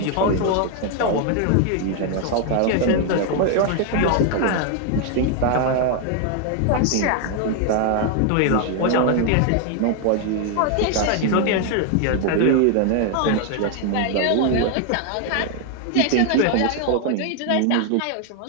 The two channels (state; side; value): different; both; correlation 0.00